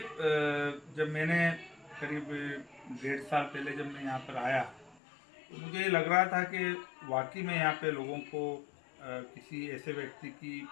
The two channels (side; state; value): right; drops out; at 5.0 s